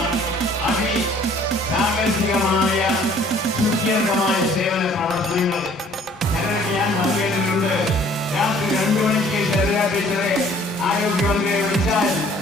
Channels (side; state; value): both; normal; correlation 0.56